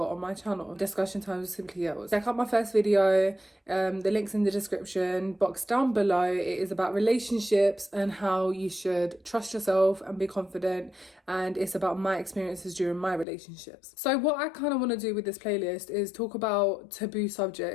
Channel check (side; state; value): right; drops out; at 13.2 s